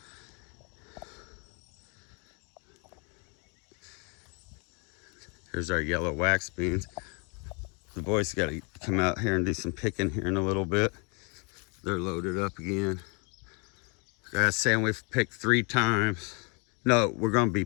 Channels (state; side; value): quieter; right; 34.4 dB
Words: Here's our yellow wax beans. The boys got to come out here and do some picking here in a little bit. They're loaded up again. Guys saying we've picked 3 times. No, we're gonna be